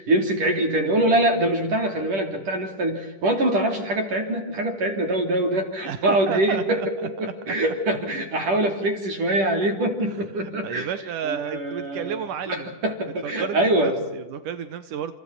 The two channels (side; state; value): left; late; 10 ms